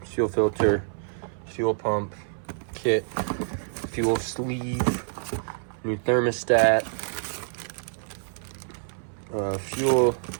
Fuel filter, fuel pump kit, fuel sleeve, new thermostat, fuel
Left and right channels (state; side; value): silent; left; 58 dB below the other